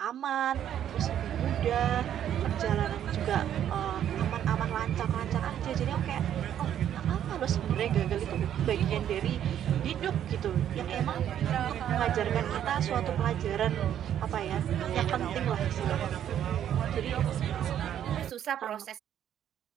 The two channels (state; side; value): quieter; left; 10.3 dB